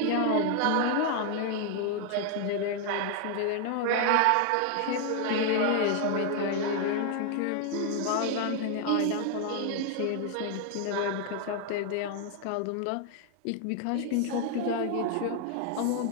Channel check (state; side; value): different; both; correlation 0.00